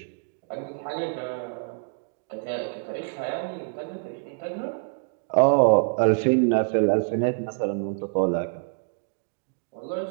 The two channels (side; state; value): left; silent; 61 dB below the other